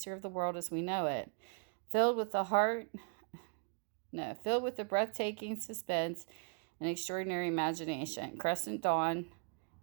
of the world as we know it. Filled with the breathtaking suspense and extraordinary imagination, Crescent Dawn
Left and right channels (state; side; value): quieter; left; 37.3 dB